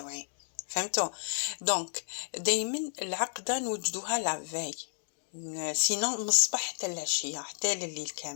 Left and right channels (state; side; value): silent; right; digital silence